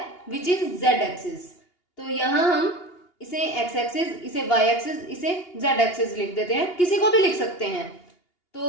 विच इज जेड एक्सिस। तो यहां हम इसे एक्स एक्सिस, इसे वाई एक्सिस, इसे जेड एक्सिस लिख देते हैं। किसी को भी लिख सकते हैं।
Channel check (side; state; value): right; late; 2.8 ms